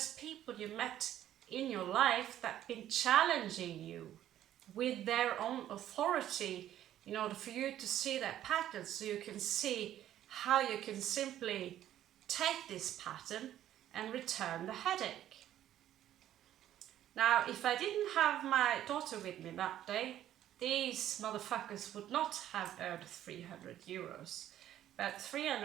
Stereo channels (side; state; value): left; quieter; 12.0 dB